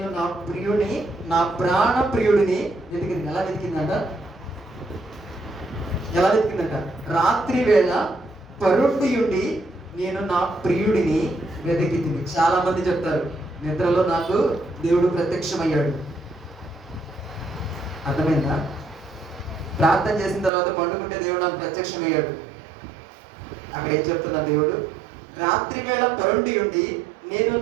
నా ప్రియుని, నా ప్రాణ ప్రియుడిని వెతికింది. ఎలా వెతికిందంట? ఎలా వెతికిందంట? రాత్రి వేళ పరుండి ఉండి నేను నా ప్రియుడిని వెతికింది. చాలా మంది చెప్తారు, నిద్రలో నాకు దేవుడు ప్రత్యక్షమయ్యాడు. అర్థమైందా? ప్రార్థన చేసిన తర్వాత పండుకుంటే దేవుడు నాకు ప్రత్యక్షమయ్యాడు. అక్కడ ఏం చెప్తున్నా దేవుడు? రాత్రి వేళ పరుండి ఉండి నేను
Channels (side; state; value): left; drops out; at 20.5 s